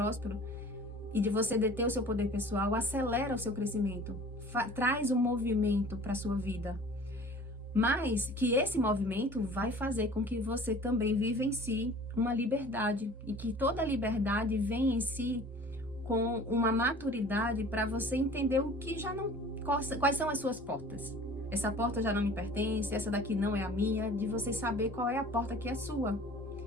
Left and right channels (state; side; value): normal; both; correlation 0.45